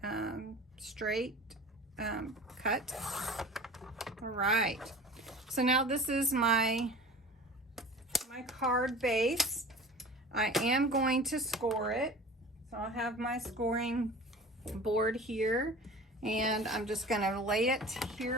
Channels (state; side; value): normal; both; correlation 0.39